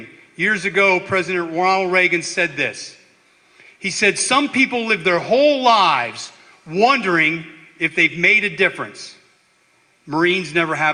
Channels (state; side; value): identical; both; correlation 1.00